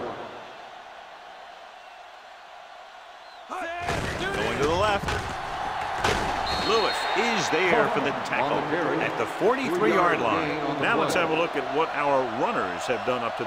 Going to the left. Lewis is there for the tackle at the 43-yard line. Now let's have a look at what our runners have done up to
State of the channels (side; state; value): both; identical; correlation 1.00